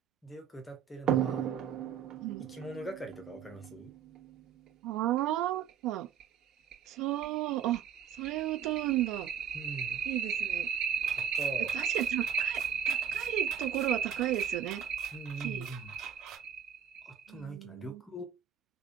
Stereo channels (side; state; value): left; quieter; 8.4 dB